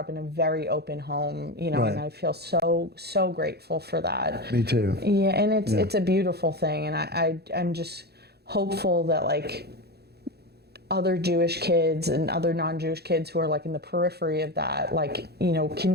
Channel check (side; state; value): left; late; 0.47 ms